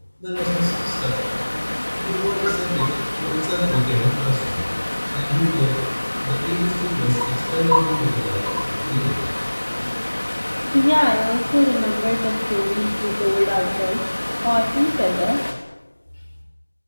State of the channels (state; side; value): inverted; both; correlation -1.00